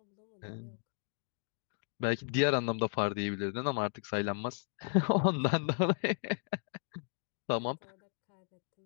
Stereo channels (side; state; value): right; silent; digital silence